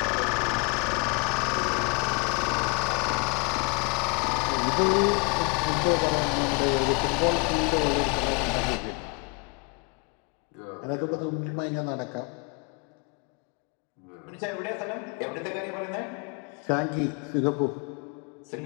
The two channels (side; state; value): right; quieter; 32.4 dB